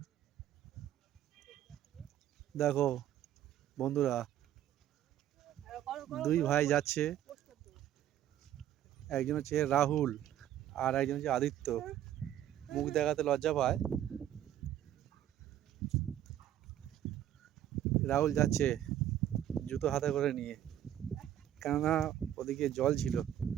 দেখো বন্ধুরা, দুই ভাই যাচ্ছে, একজন হচ্ছে রাহুল আর একজন হচ্ছে আদিত্য। মুখ দেখাতে লজ্জা পায়। রাহুল যাচ্ছে জুতো হাতে করে নিয়ে, কেননা ওদিকে জল ছিল,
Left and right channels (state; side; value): quieter; left; 11.6 dB